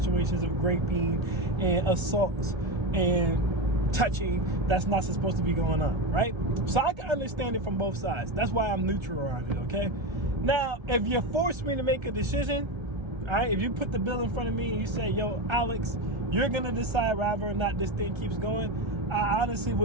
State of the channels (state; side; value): late; left; 1.3 ms